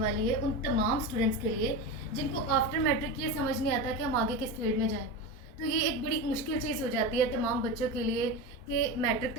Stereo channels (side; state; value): right; late; 4.5 ms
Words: है उन तमाम स्टूडेंट्स के लिए जिनको आफ्टर मैट्रिक ये समझ नहीं आता कि हम आगे किस फील्ड में जाएं। तो ये एक बड़ी मुश्किल चीज़ हो जाती है तमाम बच्चों के लिए कि मैट्रिक